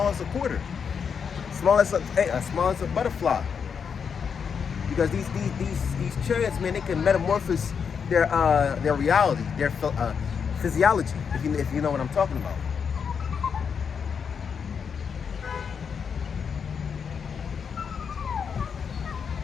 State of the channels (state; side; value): quieter; right; 6.6 dB